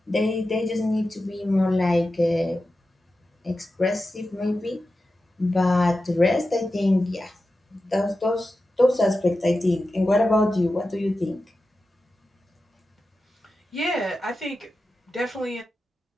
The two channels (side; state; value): both; normal; correlation 0.92